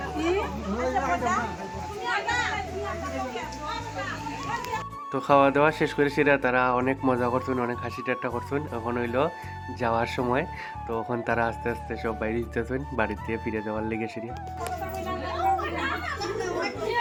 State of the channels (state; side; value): identical; both; correlation 1.00